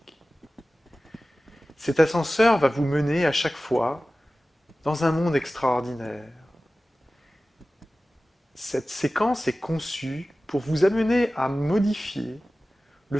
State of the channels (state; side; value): normal; both; correlation 0.96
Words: Cet ascenseur va vous mener à chaque fois dans un monde extraordinaire. Cette séquence est conçue pour vous amener à modifier le